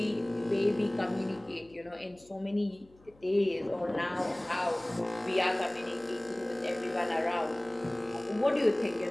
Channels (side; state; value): left; noise; hum, 28 dB below the sound